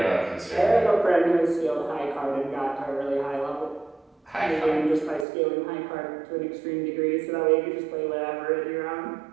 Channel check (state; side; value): drops out; left; at 5.2 s